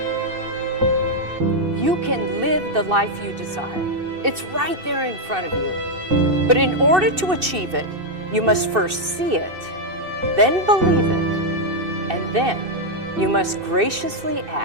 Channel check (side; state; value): left; late; 2.6 ms